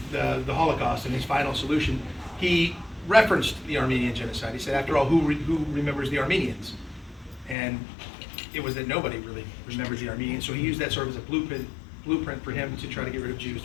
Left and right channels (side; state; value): right; drops out; at 7.6 s